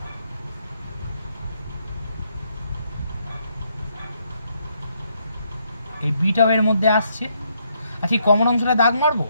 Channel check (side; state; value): both; inverted; correlation -0.74